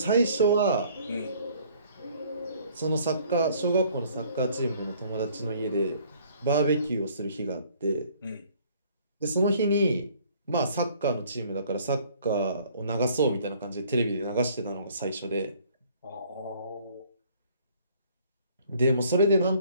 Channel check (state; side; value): inverted; both; correlation -0.58